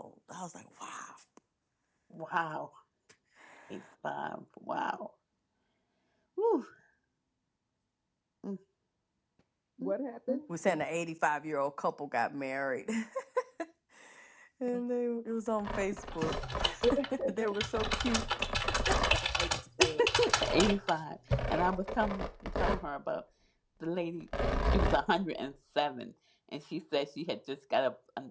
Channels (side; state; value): both; identical; correlation 1.00